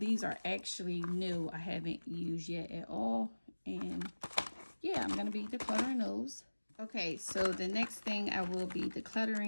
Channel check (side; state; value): both; inverted; correlation -1.00